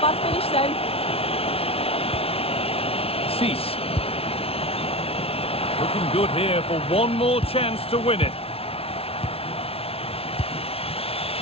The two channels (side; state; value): right; late; 0.28 ms